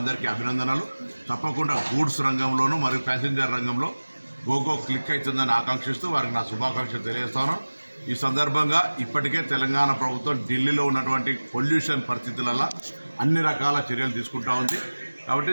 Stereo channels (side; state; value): both; inverted; correlation -1.00